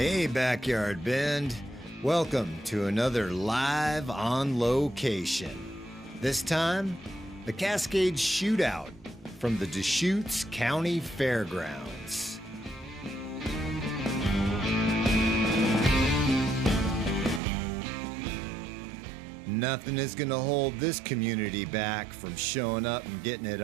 Backyard Bend. Welcome to another Live on Location. This time, the Cascade Shootout from the Deschutes County Fairgrounds. Nothing is going to hold this community back from showing up and getting it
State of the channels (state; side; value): drops out; left; at 17.4 s